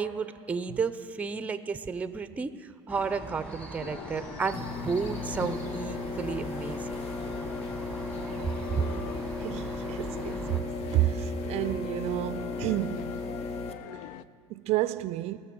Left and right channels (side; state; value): left; quieter; 4.1 dB